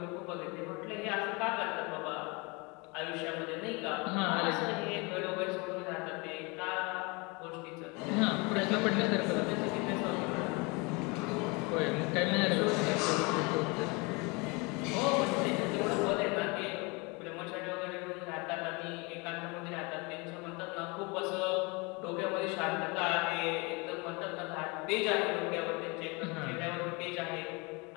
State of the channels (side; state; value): right; quieter; 28.3 dB